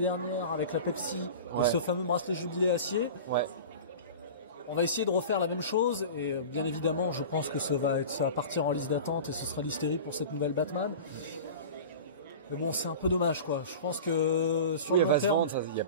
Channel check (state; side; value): inverted; both; correlation -0.34